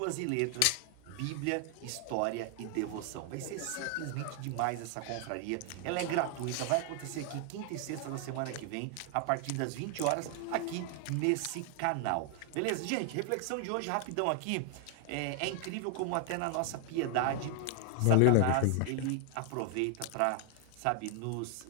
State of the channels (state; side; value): different; both; correlation 0.00